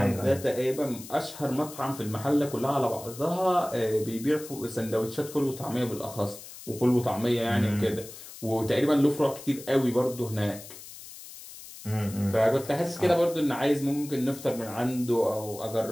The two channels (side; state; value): left; noise; hiss, 15 dB below the sound